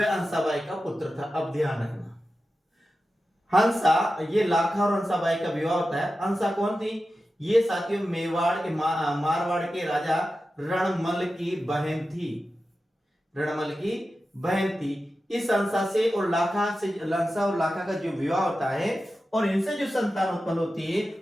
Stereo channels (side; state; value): both; normal; correlation 0.92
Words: हंसाबाई का पुत्र था। अब ध्यान रखना, हंसा, ये लाखा और हंसाबाई का विवाह होता है। हंसा कौन थी, ये साथियों मेवाड़ के मारवाड़ के राजा रणमल की बहन थी। रणमल की बहन थी। इस हंसा से और लाखा से, हंसा और लाखा का जो विवाह होता है और इनसे जो संतान उत्पन्न होती है